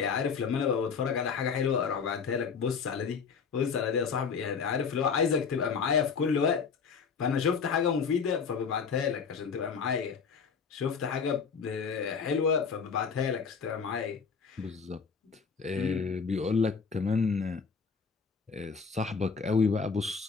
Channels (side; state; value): right; quieter; 5.8 dB